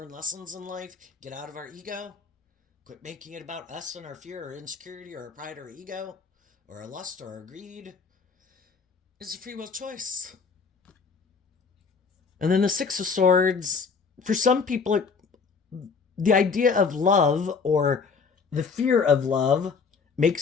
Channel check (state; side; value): quieter; right; 5.3 dB